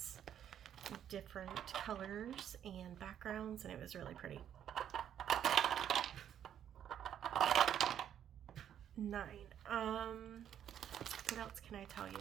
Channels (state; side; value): quieter; left; 9.8 dB